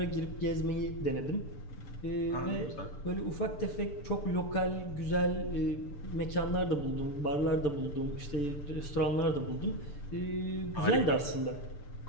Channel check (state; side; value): late; right; 6.8 ms